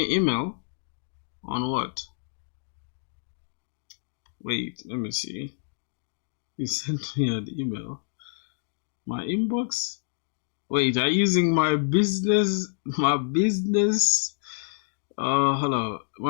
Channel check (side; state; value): right; silent; digital silence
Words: email on what? Wait, let me see. You sent me an email. My inbox? Wait, are you using my business hello,